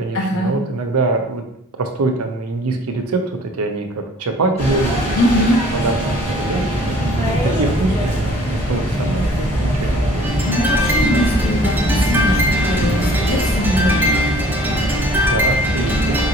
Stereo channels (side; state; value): both; normal; correlation 0.52